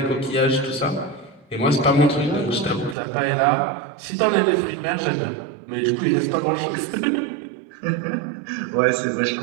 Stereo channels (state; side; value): drops out; left; at 3.0 s